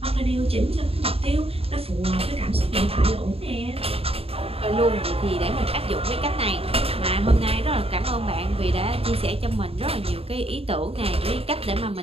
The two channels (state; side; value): late; left; 0.28 ms